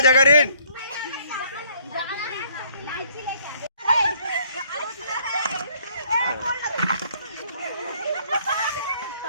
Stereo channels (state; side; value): inverted; both; correlation -0.63